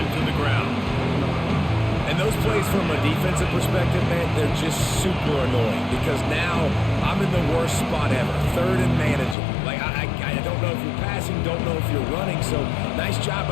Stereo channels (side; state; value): right; drops out; at 9.3 s